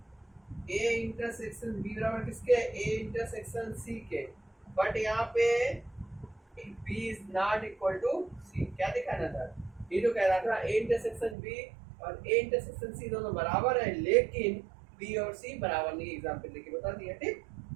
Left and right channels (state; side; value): drops out; left; at 11.4 s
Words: ए इंटरसेक्शन बी बराबर किसके, ए इंटरसेक्शन सी के, बट यहाँ पे B is not equal to C। क्या दिखाना था, ये तो कह रहा था A इंटरसेक्शन B और A इंटरसेक्शन C दोनों बराबर है, लेकिन B और C बराबर नहीं, एग्जाम्पल लेके बता दिया। ठीक,